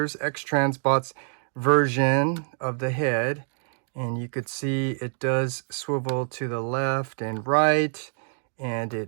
X-Transbots version of the head, and you could see it does swivel to the left and right, and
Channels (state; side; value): silent; left; 61 dB below the other